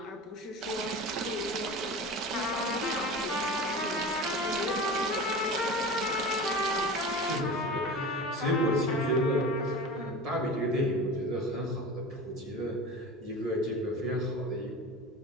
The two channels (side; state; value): both; normal; correlation 0.32